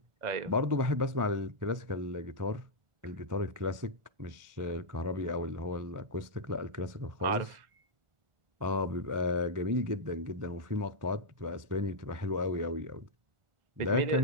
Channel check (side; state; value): left; late; 1.4 ms